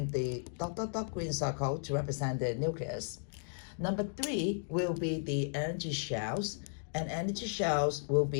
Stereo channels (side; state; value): right; silent; digital silence